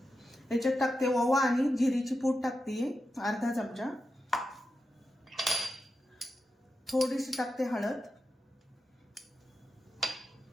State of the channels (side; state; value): both; normal; correlation 0.89